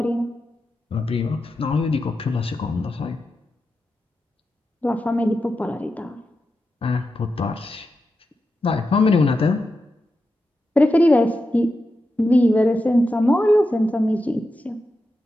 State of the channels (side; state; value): both; normal; correlation 0.89